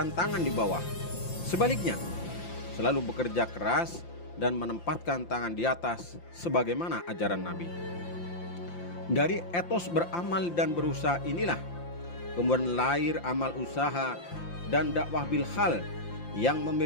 tangan di bawah. Sebaliknya, selalu bekerja keras dan menempatkan tangan di atas sebagaimana ajaran Nabi. Dari etos beramal dan berusaha inilah kemudian lahir amal usaha dan dakwah bil hal yang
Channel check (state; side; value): late; right; 5.8 ms